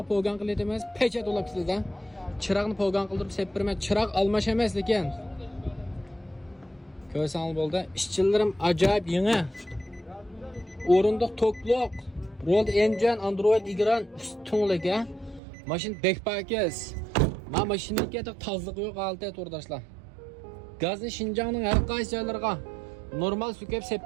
po'gan qilib emas, pechat olib sizda. Chiroqni po'gan qildirib sepirma. Chiroq almash emas lekin. Ko'rsangiz bo'ldi. İşçilerim acayip yangi. O'rindiq to'qliq. Rolled engine, Android ekran ustunlik ha. Mashin bekpakiz. Ma mashinaniki tozliq yo'q alta turdashlar. Gazni Şinjanning har qaysi joylariga normal sukab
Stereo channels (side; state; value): left; drops out; at 15.4 s